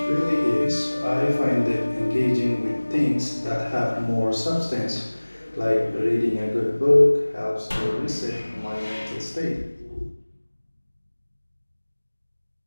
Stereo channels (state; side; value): inverted; both; correlation -1.00